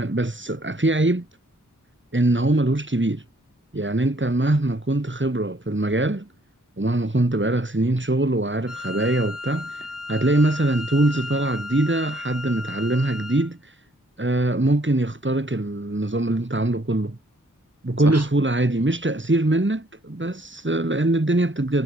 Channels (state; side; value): normal; both; correlation 0.65